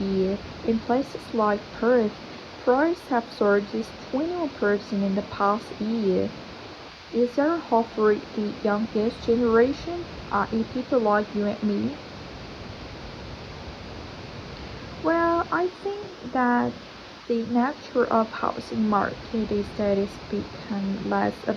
in places like Perth. Prices have surged 21% in the past year. Is there hope for the youngest generation, i.e. people like you and me? Well, I think that the nature of housing market is that it's become less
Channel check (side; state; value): both; identical; correlation 1.00